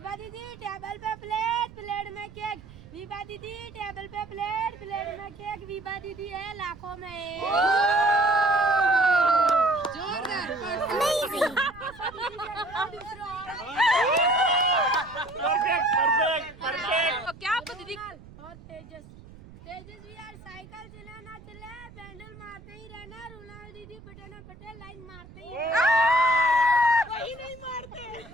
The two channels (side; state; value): right; noise; rumble, 19 dB below the sound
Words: दीदी टेबल पे प्लेट में केक. वीपा दीदी टेबल पे प्लेट में केक. वीपा दीदी है लाखों में एक. જોરદાર. क्या दीदी और तेजस भी यार साइकिल चलाना चले पैंडल मारते ही रहना. रोनाल्ड दीदी पटेना पटेल लाइन मारते ही वही नहीं मारते